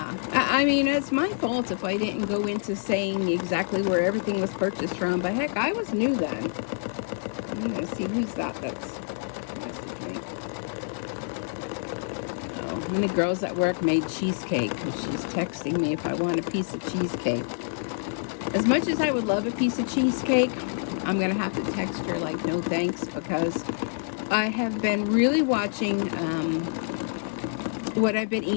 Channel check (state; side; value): silent; right; 58 dB below the other